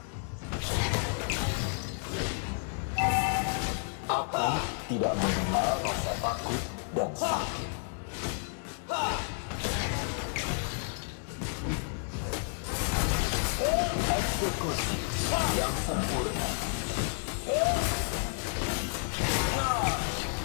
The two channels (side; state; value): right; silent; 57 dB below the other